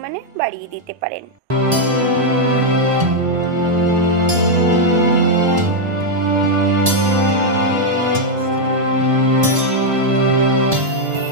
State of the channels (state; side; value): late; left; 1.7 ms